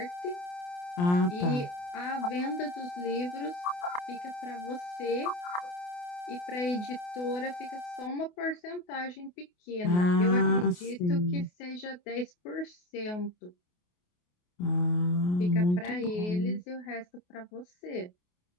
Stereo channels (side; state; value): right; late; 28 ms